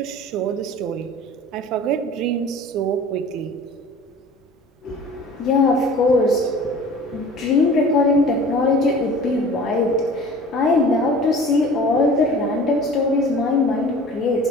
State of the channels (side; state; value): both; normal; correlation 0.43